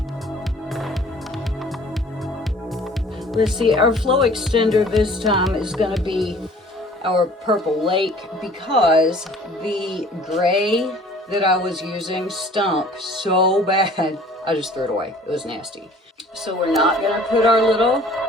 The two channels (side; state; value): both; normal; correlation 0.51